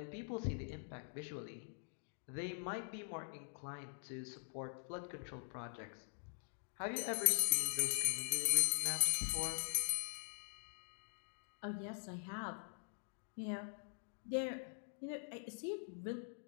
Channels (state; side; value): silent; right; digital silence